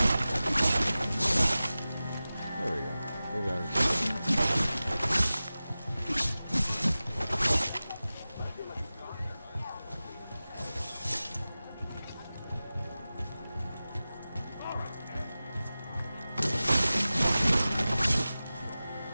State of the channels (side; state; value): both; inverted; correlation -0.96